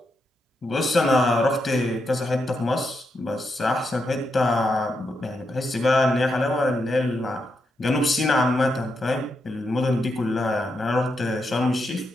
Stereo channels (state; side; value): normal; both; correlation 0.83